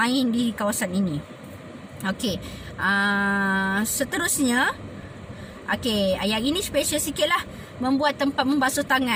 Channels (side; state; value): both; identical; correlation 1.00